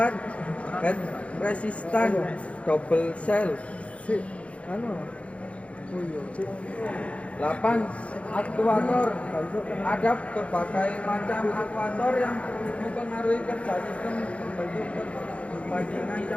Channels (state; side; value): late; right; 0.063 ms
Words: head resistant double cell, 8 aktuator. Ada berbagai macam aktuator yang mempengaruhi kerja sistem pembentuk perbandingan